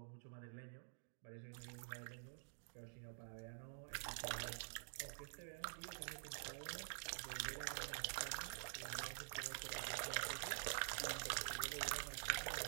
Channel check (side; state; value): left; silent; digital silence